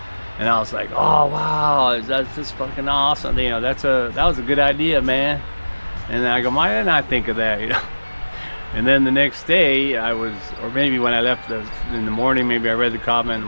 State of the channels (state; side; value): inverted; both; correlation -1.00